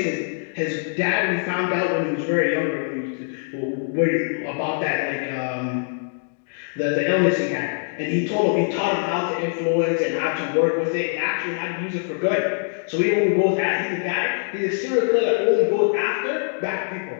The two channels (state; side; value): silent; right; digital silence